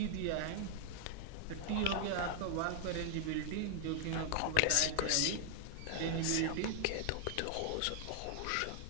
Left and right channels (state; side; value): different; both; correlation 0.00